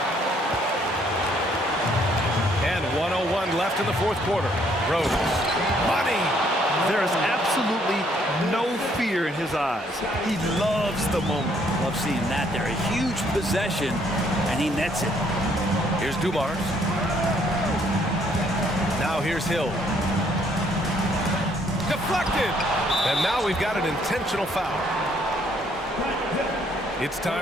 And 1:01 left in the fourth quarter. Rose. Money! There is absolutely no fear in his eyes. He loves the moment. Love seeing that there. A huge possession, and he nets it. Here's Dumars. Now here's Hill. Deflected! And now we've got an intentional foul. It's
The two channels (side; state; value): both; normal; correlation 0.67